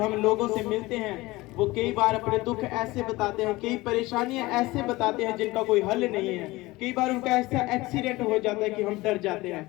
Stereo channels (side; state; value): right; quieter; 20.4 dB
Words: लोगों से मिलते हैं, वो कई बार अपने दुख ऐसे बताते हैं, कई परेशानियां ऐसे बताते हैं जिनका कोई हल नहीं है। कई बार उनका ऐसा एक्सीडेंट हो जाता है कि हम डर जाते